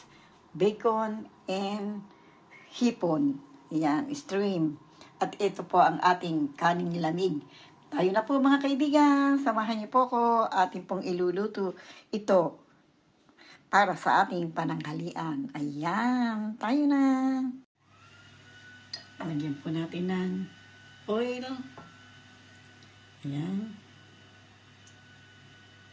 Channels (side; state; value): both; identical; correlation 1.00